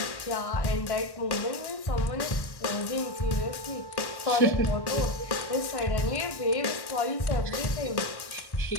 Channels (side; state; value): right; late; 1.1 ms